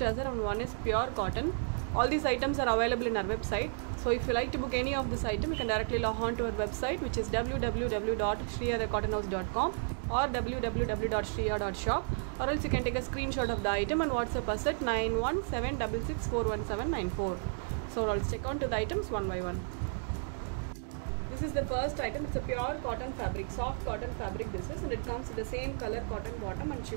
and one is pure cotton. All these items are available in our website. So if you like to book any of this item, you can directly log on to our website, which is www.shriyadthecottonhouse.com or www.shriya.shop, or else you can take a screenshot of the item and WhatsApp us at 9176641794. So let's check on to the items one by one. This is the first item. It's a pure cotton fabric, soft cotton fabric this is, and it comes with the same color cotton bottom and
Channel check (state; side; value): silent; left; digital silence